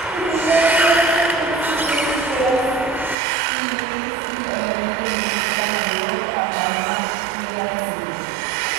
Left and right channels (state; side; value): drops out; left; at 3.2 s